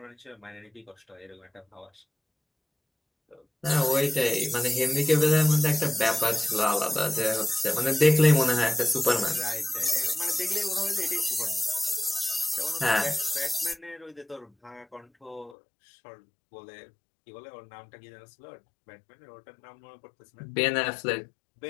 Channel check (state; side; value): drops out; right; at 15.6 s